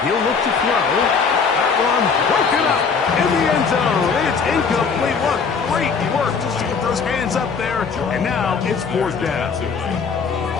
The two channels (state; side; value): quieter; right; 5.5 dB